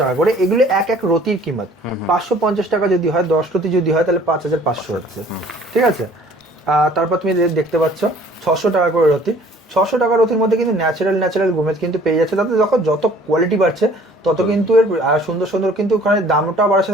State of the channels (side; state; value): both; normal; correlation 0.54